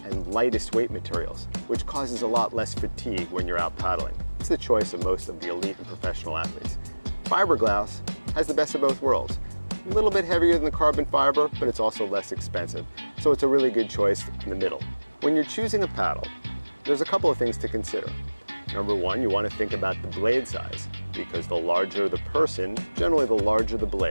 and lightest weight materials, which causes a lot less fatigue when you're out paddling. It's the choice of most of the elite and professional athletes. Fiberglass has the best of both worlds. A little bit heavier than the carbon fiber, but it's also less expensive. So it's a really good choice in the middle. When you're choosing a paddle, there's a couple of things to consider. Number one, you want to think about the blade size, because the larger the person, generally the larger the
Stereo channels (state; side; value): inverted; both; correlation -1.00